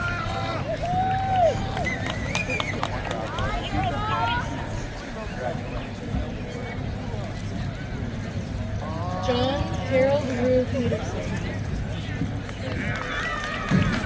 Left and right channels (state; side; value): identical; both; correlation 1.00